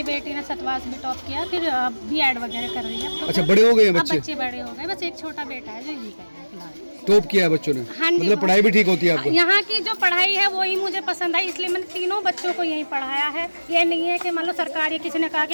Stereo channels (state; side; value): inverted; both; correlation -1.00